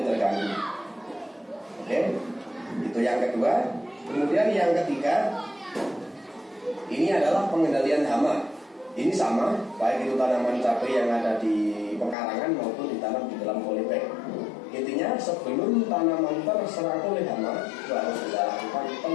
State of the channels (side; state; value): right; drops out; at 12.2 s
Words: terganggu. Oke, itu yang kedua. Kemudian yang ketiga, ini adalah pengendalian hama. Ini sama, baik itu tanaman cabai yang ada di pekarangan maupun ditanam di dalam polybag. Intinya sebelum tanaman terserang oleh hama, itu harus kita lakukan